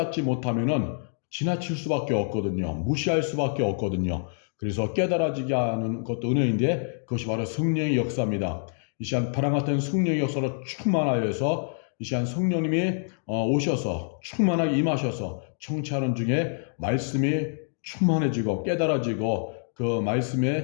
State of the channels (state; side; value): silent; right; digital silence